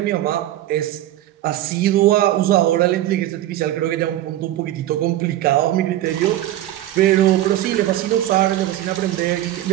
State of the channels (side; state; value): left; quieter; 13.8 dB